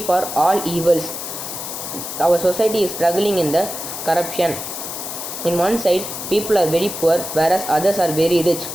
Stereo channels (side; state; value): left; noise; hiss, 7 dB below the sound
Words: all evils. Our society is struggling in the corruption. In one side, people are very poor, whereas others are very rich.